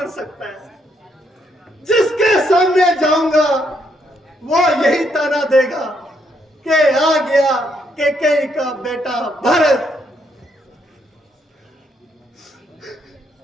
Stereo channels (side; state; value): both; normal; correlation 0.74